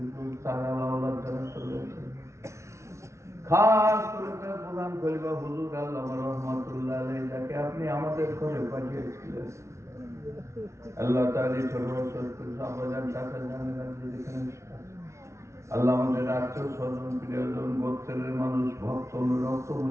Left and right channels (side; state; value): left; late; 0.14 ms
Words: সালাহ আল্লাহ জানা চলেছে। খাস করে তার প্রধান খলিফা হুজুর আল্লামা রহমাতুল্লাহ আলাইহি যাকে আপনি আমাদের ঘরে পাঠিয়েছিলেন। আল্লাহ তাআলা ছোট ছোট সাহাবাজান চাচা জানেন যেখানে আল্লাহ আমাদের আত্মীয় স্বজন প্রিয়জন গোত্রের মানুষ ভক্ত রক্ত